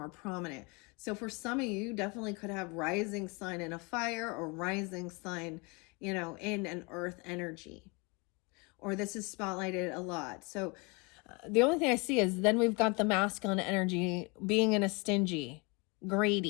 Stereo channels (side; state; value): right; quieter; 29.1 dB